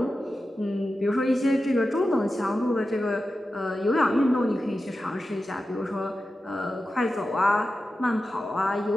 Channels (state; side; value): normal; both; correlation 0.92